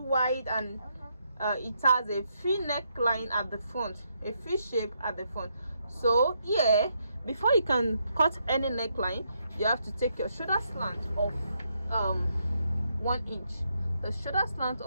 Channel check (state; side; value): inverted; both; correlation -0.78